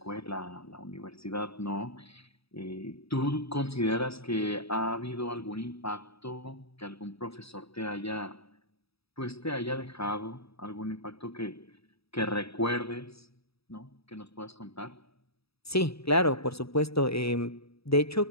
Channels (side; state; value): right; late; 0.77 ms